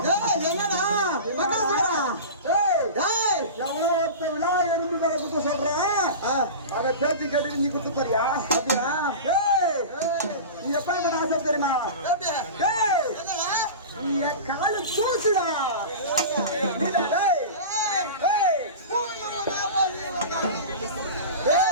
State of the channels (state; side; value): inverted; both; correlation -0.30